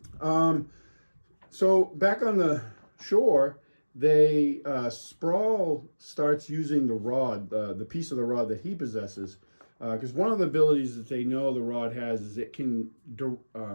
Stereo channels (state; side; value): inverted; both; correlation -1.00